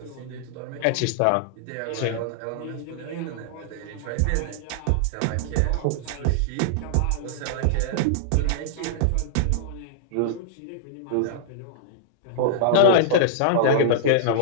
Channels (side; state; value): both; different; correlation -0.01